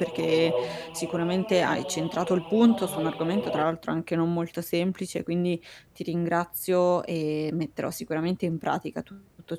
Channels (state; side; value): identical; both; correlation 1.00